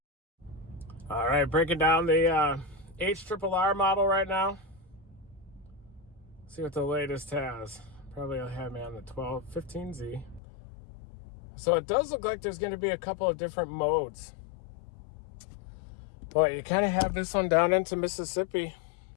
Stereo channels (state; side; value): drops out; right; at 10.4 s